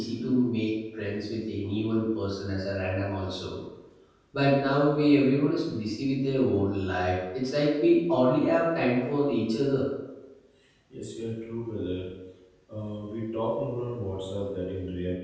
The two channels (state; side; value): identical; both; correlation 1.00